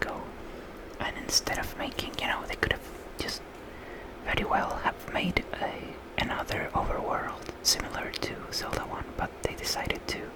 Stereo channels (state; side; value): identical; both; correlation 1.00